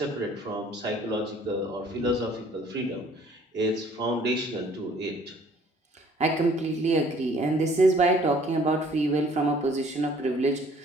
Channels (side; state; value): both; normal; correlation 0.57